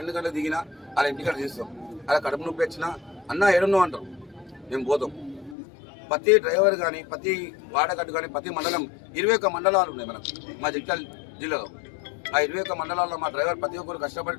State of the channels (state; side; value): drops out; right; at 5.6 s